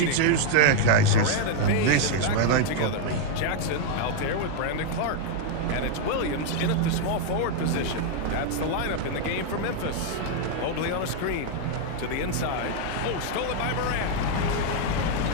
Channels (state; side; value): different; both; correlation 0.00